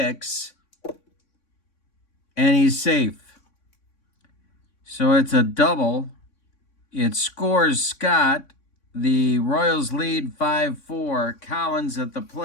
And he's safe. So it's a double. It scores Scott. The Royals lead 5-4. Collins at the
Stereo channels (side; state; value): right; late; 3.6 ms